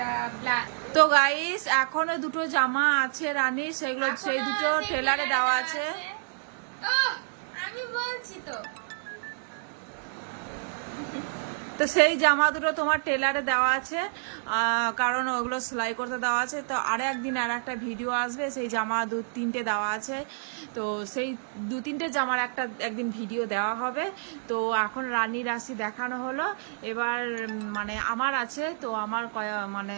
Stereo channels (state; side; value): silent; left; digital silence